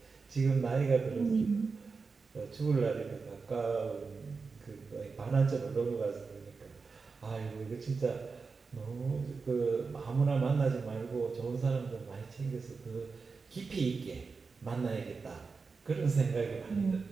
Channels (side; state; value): left; quieter; 4.7 dB